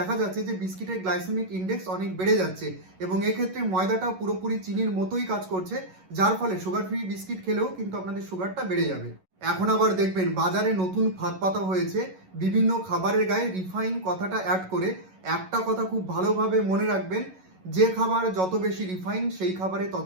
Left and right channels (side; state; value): left; late; 11 ms